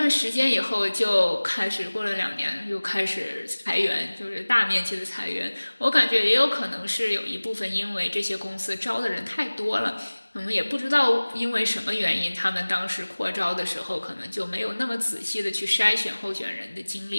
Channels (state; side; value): inverted; both; correlation -1.00